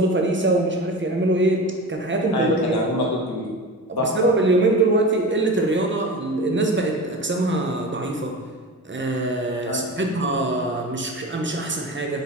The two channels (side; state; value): both; normal; correlation 0.30